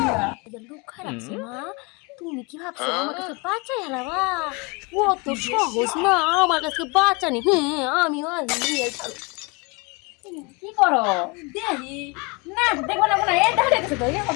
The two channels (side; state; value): right; quieter; 28.6 dB